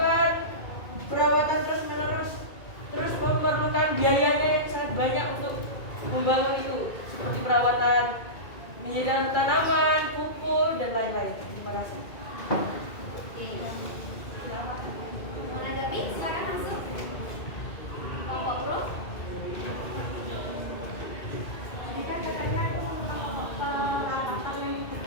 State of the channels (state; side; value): late; right; 2.4 ms